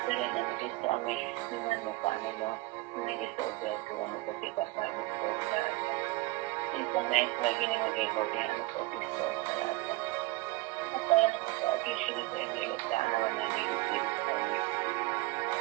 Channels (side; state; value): left; quieter; 20.5 dB